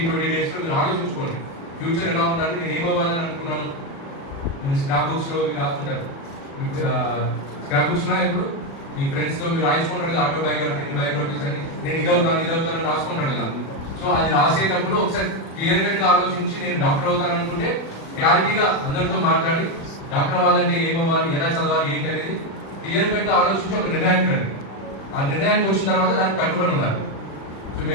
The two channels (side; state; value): right; late; 36 ms